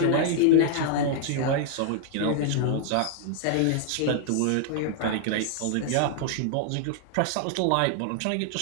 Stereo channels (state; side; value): different; both; correlation -0.01